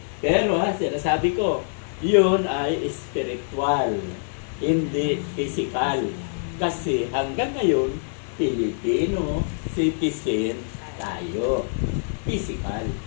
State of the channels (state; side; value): silent; right; digital silence